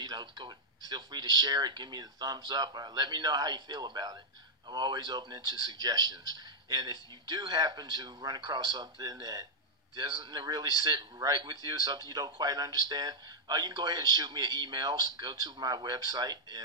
free to share it, give me the thumbs up, or let me know how you feel about it. I'm always open to suggestions. And if you do happen to run across something that doesn't really sit right with you, something you don't quite understand, you can go ahead and shoot me an email. Go to my website,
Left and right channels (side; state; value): both; normal; correlation -0.03